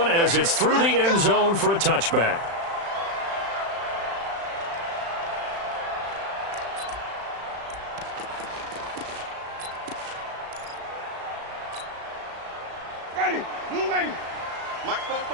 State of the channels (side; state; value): left; late; 35 ms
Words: as it's through the end zone for a touchback. Ready, blue lady. Mike